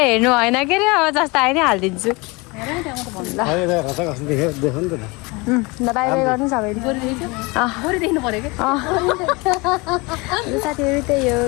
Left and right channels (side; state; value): right; quieter; 26.1 dB